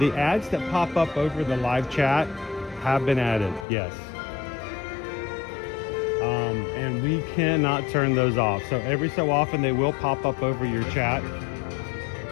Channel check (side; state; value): right; drops out; at 3.7 s